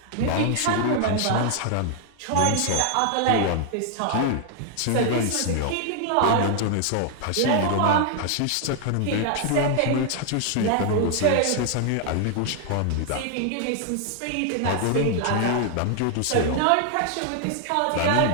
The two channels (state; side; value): different; both; correlation 0.00